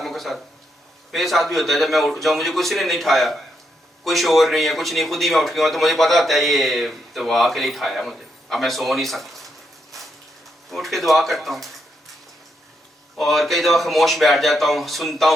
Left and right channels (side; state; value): both; normal; correlation 0.80